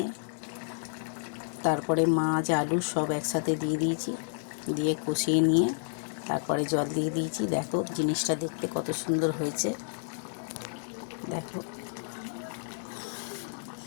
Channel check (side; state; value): right; silent; digital silence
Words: তারপরে মাছ, আলু সব একসাথে দিয়ে দিয়েছি। দিয়ে কষিয়ে নিয়ে তারপরে জল দিয়ে দিয়েছি। দেখো, জিনিসটা দেখতে কত সুন্দর হয়েছে। দেখো